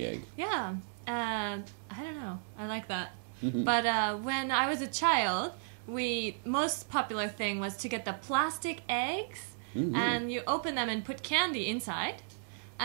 egg. Yeah, I don't know. I like that. But when I was a child, most popular thing was to get the plastic eggs and you open them and put candy inside.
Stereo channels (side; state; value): left; silent; 55 dB below the other